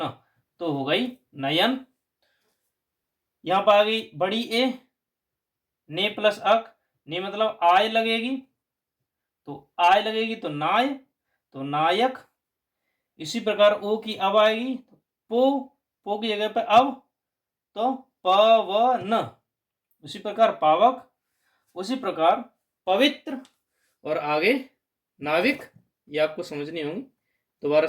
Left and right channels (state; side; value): identical; both; correlation 1.00